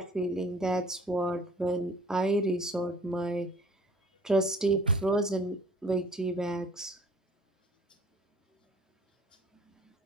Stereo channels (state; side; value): normal; both; correlation 0.51